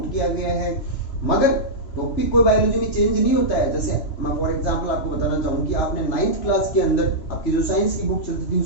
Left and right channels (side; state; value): right; late; 3.0 ms